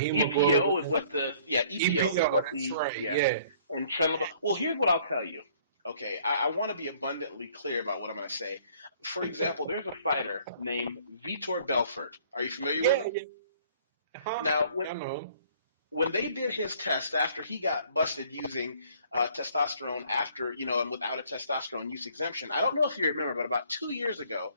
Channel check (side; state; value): both; inverted; correlation -0.57